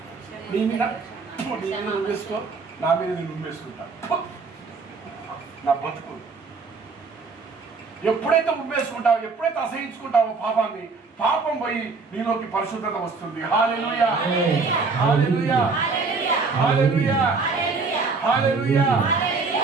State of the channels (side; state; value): left; quieter; 4.4 dB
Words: నీ మీద నువ్వేసుకో, నా మీద నేను ఉమ్మేసుకుంటా. నా బతుకు ఎప్పుడైతే ఉమ్మేసుకుంటావో, ఎప్పుడైతే అసహించుకుంటావో పాపాన్ని, పాపం పోయి నీలోకి పరిశుద్ధత వస్తుంది. హల్లెలూయా, హల్లెలూయా, హల్లెలూయా, హల్లెలూయా,